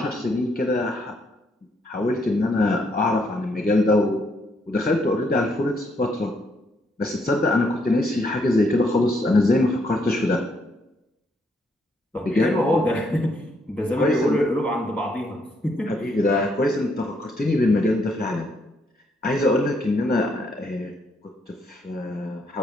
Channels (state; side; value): normal; both; correlation 0.73